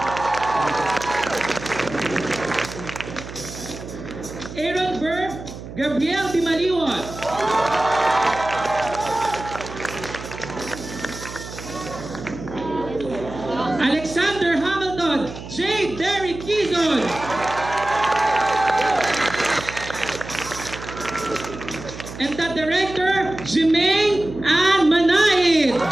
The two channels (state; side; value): noise; right; hum, 12 dB below the sound